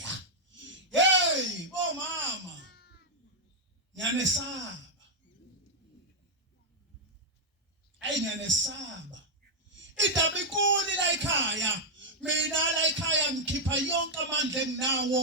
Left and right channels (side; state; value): both; normal; correlation -0.02